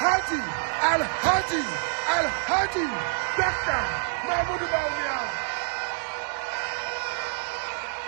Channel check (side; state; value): left; silent; 60 dB below the other